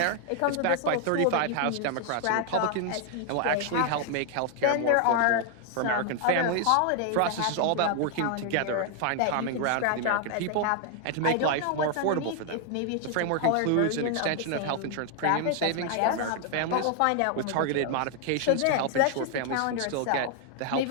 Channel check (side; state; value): both; different; correlation 0.00